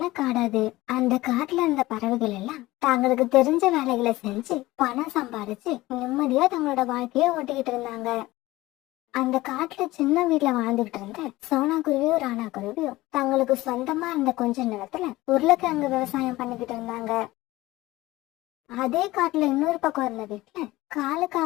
காடாது. அந்த காட்டுல இருந்த பறவைகள் எல்லாம் தங்களுக்கு தெரிஞ்ச வேலைகளை செஞ்சு பணம் சம்பாதிச்சு நிம்மதியா தங்களோட வாழ்க்கைய ஓட்டிக்கிட்டு இருந்தாங்க. அந்த காட்டுல சின்ன வீட்டுல வாழ்ந்துகிட்டு இருந்த சோனா குருவியும் ராணா குருவியும் தங்களுக்கு சொந்தமா இருந்த கொஞ்ச நேரத்துல உருளைக்கிழங்கு விவசாயம் பண்ணிக்கிட்டு இருந்தாங்க. அதே காட்டுல இன்னொரு பக்கம் இருந்த வீட்டுல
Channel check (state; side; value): quieter; right; 18.4 dB